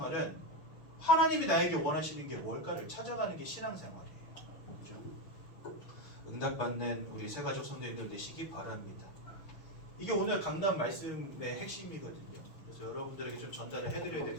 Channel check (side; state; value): right; late; 6.8 ms